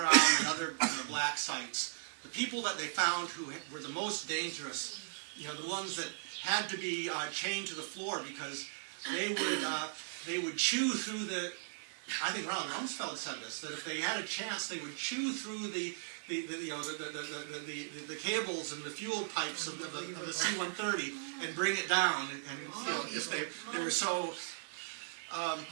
and other black sites. The people that they found who were the most dangerous, the ones that had to be chained to the floor because they would chew through the. I think Ronald Rumsfeld said this, that if they had a chance, they would chew through the cables and the fuel pipes of the C-130 and bring it down. And if they were so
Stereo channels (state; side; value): silent; left; 53 dB below the other